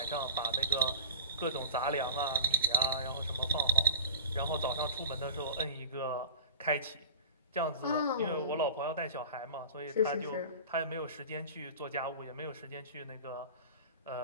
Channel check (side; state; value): both; inverted; correlation -0.36